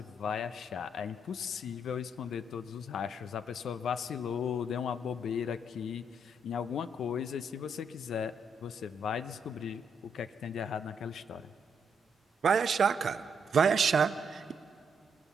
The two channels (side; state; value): both; normal; correlation 0.75